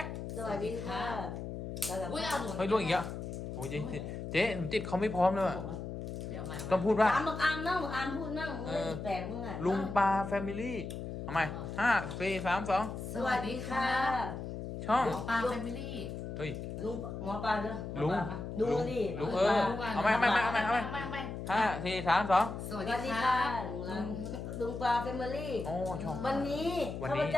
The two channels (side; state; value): left; noise; hum, 7 dB below the sound